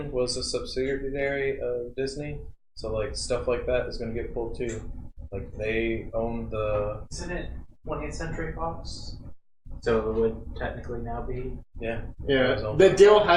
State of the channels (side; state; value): both; identical; correlation 1.00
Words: was a subsidiary of Disney, so like stuff like that is gonna get pulled too. Like they own the. Isn't it 20th Century Fox? So it would technically now be. Yeah. Yeah. The deal